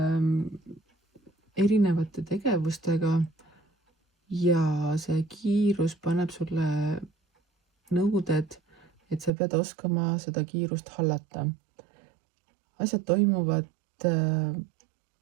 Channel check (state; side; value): drops out; left; at 9.3 s